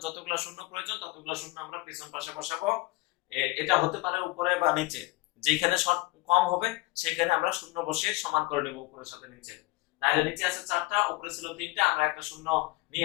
যতগুলো শূন্য প্রয়োজন ততগুলো শূন্য আমরা পেছন পাশে বসাবো। এটা হতে পারে উপরে বা নিচে, যেখানে শর্ট কম হবে সেখানে আমরা শূন্য বসিয়ে সমান করে নেব উপরের সাথে নিচে। তাহলে নিচে আছে চারটা, উপরে ছিল তিনটা, আমরা একটা শূন্য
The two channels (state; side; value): quieter; right; 21.8 dB